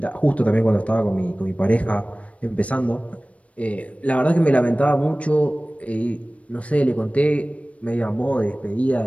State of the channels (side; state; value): right; late; 0.065 ms